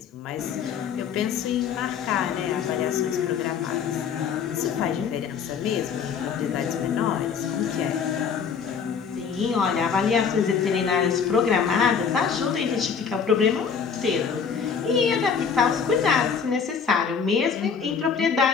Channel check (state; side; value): quieter; right; 6.5 dB